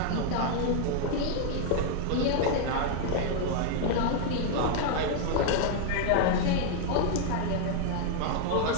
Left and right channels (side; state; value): both; different; correlation 0.00